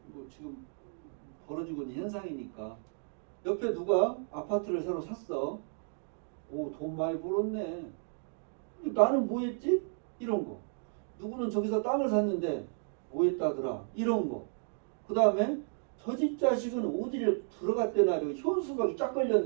뭐 지금 벌어지고 있는 현상이니까. 옆에 누가 아파트를 새로 샀어. 오, 돈 많이 벌었네. 나는 뭐 했지? 이런 거. 누구는 저기서 땅을 샀는데 뭐 했다더라. 이런 거. 그 다음에 저 집 자식은 어디를 들어갔대나, 현수막이 쫙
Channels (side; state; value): left; silent; 56 dB below the other